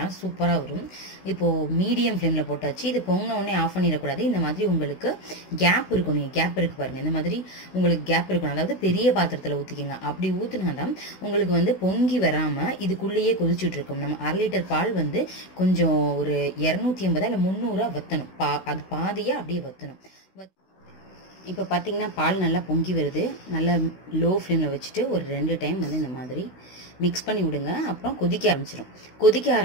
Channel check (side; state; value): right; late; 16 ms